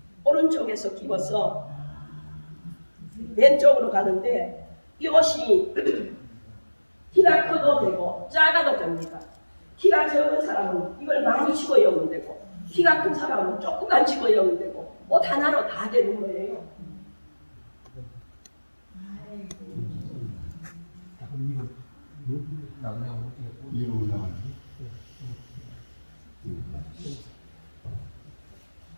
오른쪽에서 끼워서 왼쪽으로 가는데 이 옷이 키가 커도 되고 작아도 됩니다. 키가 적은 사람은 이걸 많이 집어여면 되고 키가 큰 사람은 조금만 집어여면 되고 옷 하나로 다 되는 거예요.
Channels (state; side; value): inverted; both; correlation -1.00